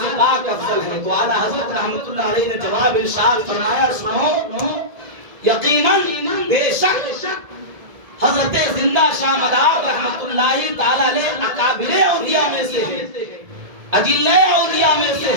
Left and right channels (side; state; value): left; late; 1.7 ms